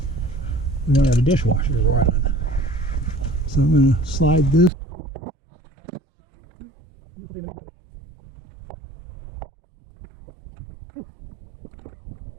We don't have a dishwasher to run on. So I'm going to slide this.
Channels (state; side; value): drops out; left; at 4.7 s